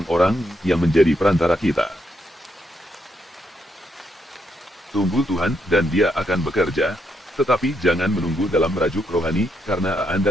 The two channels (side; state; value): both; normal; correlation 0.78